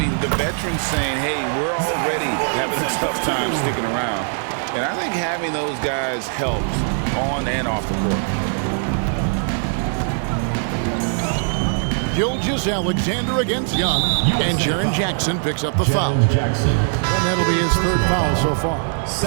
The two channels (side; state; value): left; silent; 65 dB below the other